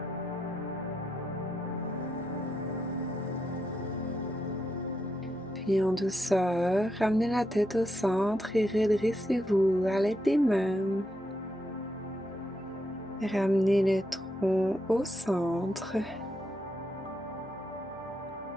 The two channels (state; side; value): noise; right; hum, 26 dB below the sound